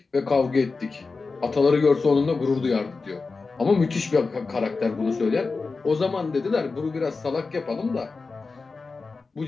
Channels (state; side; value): quieter; right; 4.2 dB